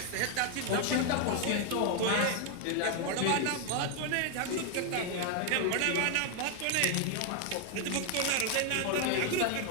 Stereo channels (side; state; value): both; different; correlation 0.00